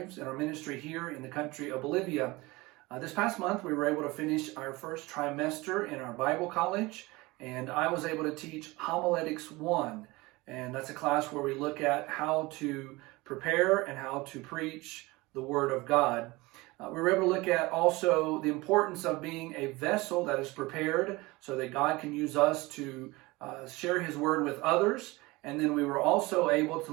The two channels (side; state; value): left; quieter; 22.1 dB